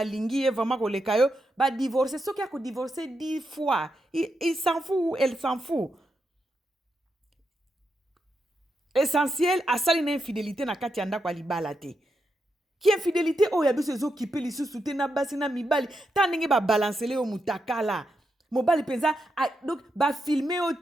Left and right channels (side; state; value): both; normal; correlation 0.84